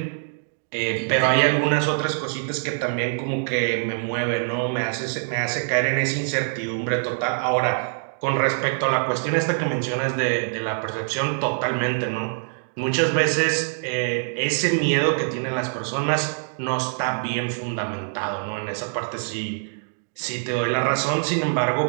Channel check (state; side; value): silent; left; digital silence